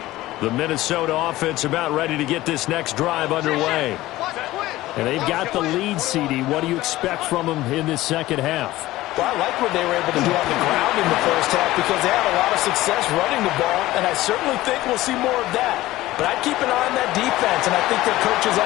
The Minnesota offense about ready to get this next drive underway. And they've got the lead, CD. What do you expect from them in this second half? Well, I like what they were able to do on the ground in the first half because they had a lot of success running the ball, and I certainly think we'll see more of that. But I'd keep an eye on that defense, and I think their coaches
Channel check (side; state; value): right; quieter; 16.9 dB